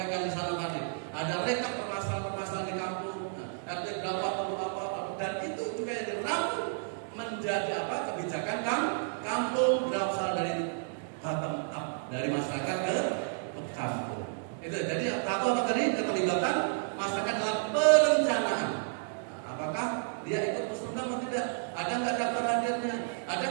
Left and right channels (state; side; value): silent; left; digital silence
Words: di sana tadi. Ada rekap permasalahan di kampung, RT berapa perlu apa, dan itu juga yang dirangkum menjadi kebijakan kampung berasal dari bottom up, dari masyarakat ke kampung. Itu jadi apa tadi keterlibatan masyarakat dalam perencanaan. Apakah dia ikut musrembang atau tidak? Ada nggak daftar hadirnya? Ada